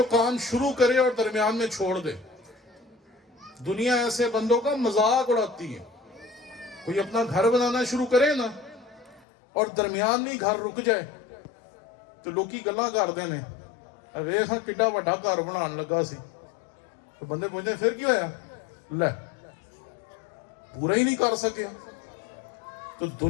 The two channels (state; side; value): drops out; right; at 9.2 s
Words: کام شروع کرے اور درمیان میں چھوڑ دے. دنیا ایسے بندوں کا مذاق اڑاتی ہے. کوئی اپنا گھر بنانا شروع کرے نا اور درمیان میں گھر رک جائے تو لوکی گلاں کر دینے ویکھ ہاں کڈا وڈا گھر بنان لگا سی. تو بندے پوچھتے پھر کی ہویا؟ لے پورا ہی نہیں کر سکے. تو